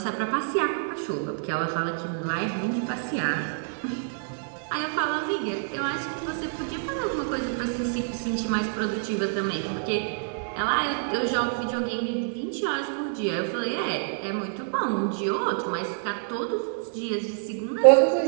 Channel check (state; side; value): silent; left; digital silence